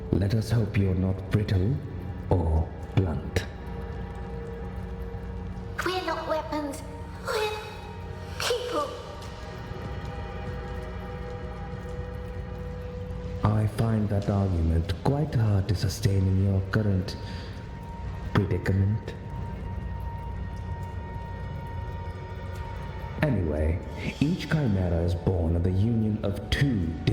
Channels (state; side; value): identical; both; correlation 1.00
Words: Let us hope you're not brittle or blunt. We're not weapons. We're people. I find that argument quite hard to sustain in your current predicament. Anyway, each Chimera is born of the union of two